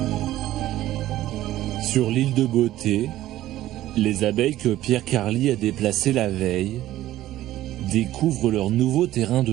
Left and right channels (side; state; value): left; quieter; 14.4 dB